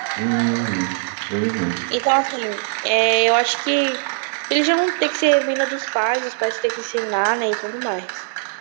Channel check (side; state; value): left; silent; 60 dB below the other